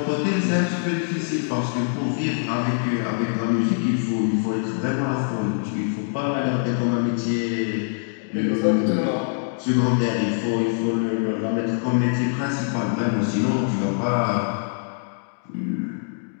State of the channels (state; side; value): silent; right; digital silence